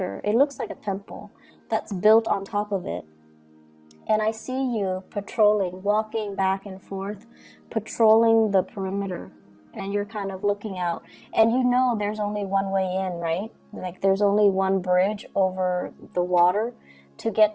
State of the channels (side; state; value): both; identical; correlation 1.00